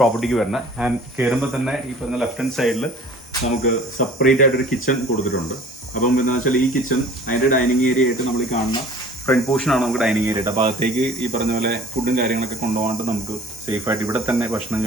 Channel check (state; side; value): normal; both; correlation 0.48